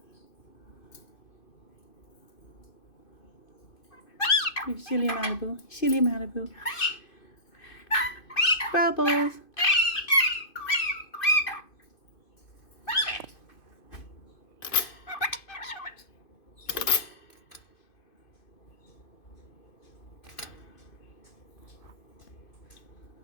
You silly Malibu. Silly Malibu. Bubbles.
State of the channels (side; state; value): right; late; 2.5 ms